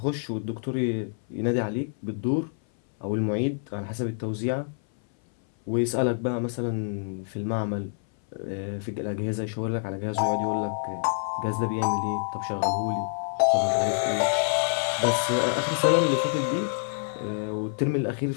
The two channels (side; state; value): right; silent; 58 dB below the other